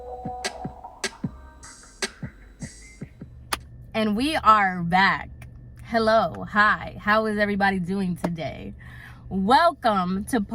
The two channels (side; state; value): both; identical; correlation 1.00